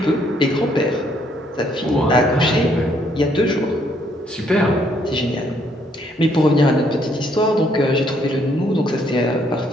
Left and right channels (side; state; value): both; normal; correlation 0.69